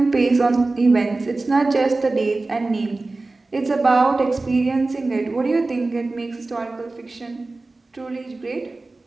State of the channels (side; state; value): left; quieter; 3.3 dB